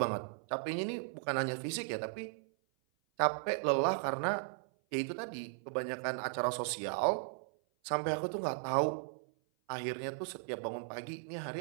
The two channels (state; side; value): silent; left; 53 dB below the other